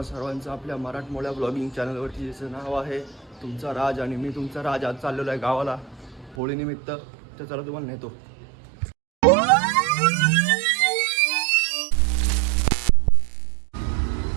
सर्वांचं आपल्या मराठमोळ्या ब्लॉगिंग चॅनलवरती, ज्याचं नाव आहे तुमचा राज. आणि मी तुमचा राज आज चाललेलो आहे गावाला होळीनिमित्त. तर चला तुम्हाला नेतो.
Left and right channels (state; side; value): drops out; left; at 6.4 s